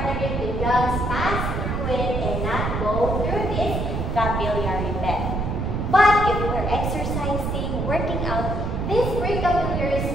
the lungs pass through it and not go through this capillary bed. But if we're exercising, working out, this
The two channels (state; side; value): noise; right; rumble, 2 dB below the sound